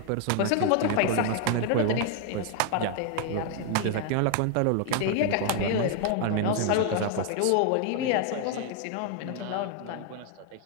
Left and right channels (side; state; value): both; different; correlation 0.00